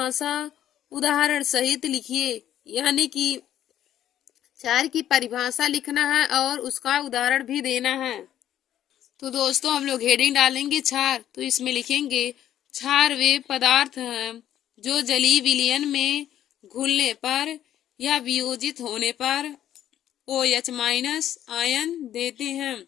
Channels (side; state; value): right; quieter; 11.4 dB